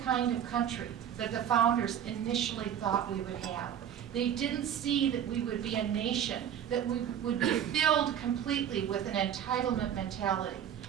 kind of country that the founders initially thought we would have. They didn't see that we would be a nation that would be filled completely with an entitlement mentality.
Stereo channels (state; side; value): quieter; left; 9.4 dB